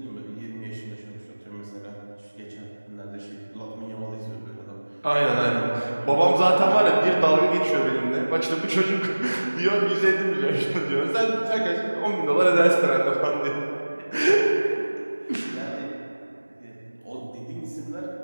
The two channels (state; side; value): inverted; both; correlation -1.00